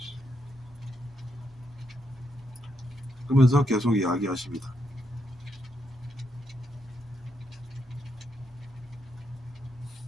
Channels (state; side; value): normal; both; correlation 0.80